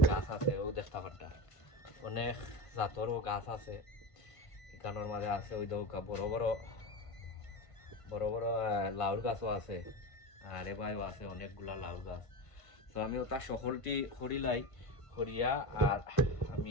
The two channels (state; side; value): late; right; 1.5 ms